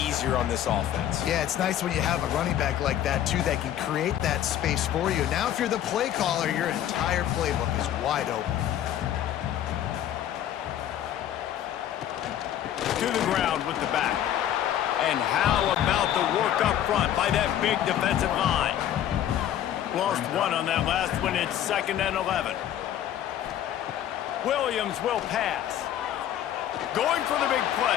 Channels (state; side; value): quieter; right; 11.2 dB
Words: on this offense. Yeah, it's nice when you have a running back like that, too, that can create that space for you. Now, if you're the play caller, your entire playbook is wide open. To the ground with the back. And how about the work up front by that big defensive line? Lost 1 on that last one. It's 2nd and 11. Williams will pass. Going for the big